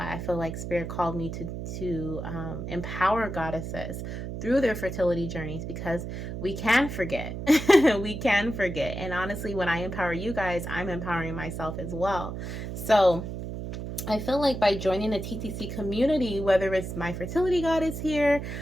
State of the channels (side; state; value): right; noise; hum, 6 dB below the sound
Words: I feel like spirit called me to empower goddesses through their fertility journeys, because we can forget. We can forget. And honestly, when I empower you guys, I'm empowering myself as well. So I feel like by joining a TTC community, whether it's My Fertility Goddess here